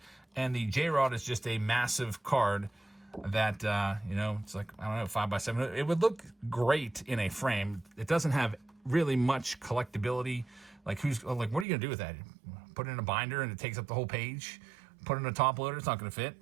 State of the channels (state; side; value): drops out; left; at 11.7 s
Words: And the J-Rod is just a massive card that, it's like, I don't know, 5x7. It would look great in a frame. It doesn't have really much collectability. Like, what are you going to do with that? Put it in a binder and it takes up the whole page? Put it in a top loader? It's not going to fit.